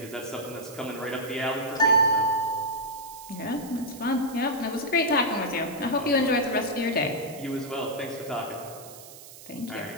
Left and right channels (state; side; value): noise; right; hiss, 17 dB below the sound